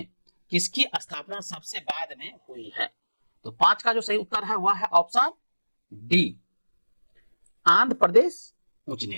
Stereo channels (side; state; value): both; inverted; correlation -1.00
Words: किसकी स्थापना सबसे बाद में हुई है? तो 5 का जो सही उत्तर है वह है ऑप्शन डी, आंध्र प्रदेश उच्च